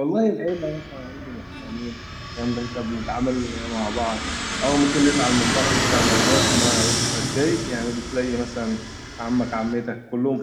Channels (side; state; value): both; identical; correlation 1.00